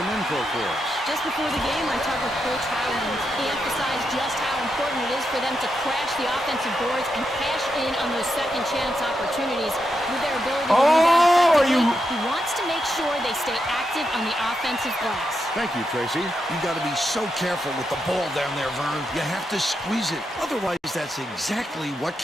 info for us. Just before the game, I talked with Coach Howland. He emphasized just how important it is for them to crash the offensive boards and cash in on those second chance opportunities with their ability to Oh, are you... He wants to make sure they stay active on the offensive glass. Thank you, Tracy. You got to be so careful with the ball down there, Vern. You have to squeeze it. Otherwise, that's exactly what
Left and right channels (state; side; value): normal; both; correlation 0.84